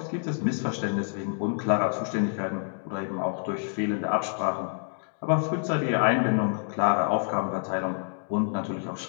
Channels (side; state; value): right; silent; 60 dB below the other